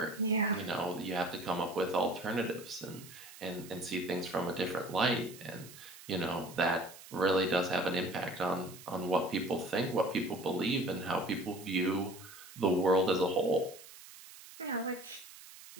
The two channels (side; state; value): right; noise; hiss, 17 dB below the sound